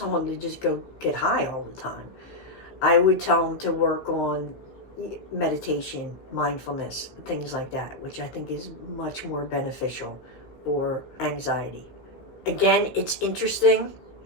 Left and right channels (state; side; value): late; right; 15 ms